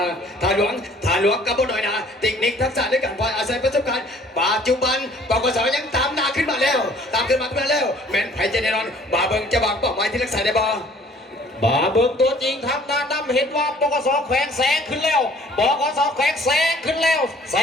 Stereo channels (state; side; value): normal; both; correlation 0.55